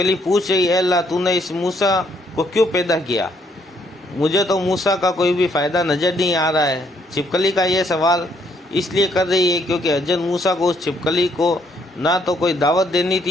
पूछ रही है, अल्लाह तूने इस मूसा को क्यों पैदा किया? मुझे तो मूसा का कोई भी फ़ायदा नज़र नहीं आ रहा है। छिपकली का ये सवाल इसलिए कर रही है क्योंकि हज़रत मूसा को उस छिपकली को ना तो कोई दावत देनी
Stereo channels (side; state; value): both; normal; correlation 0.69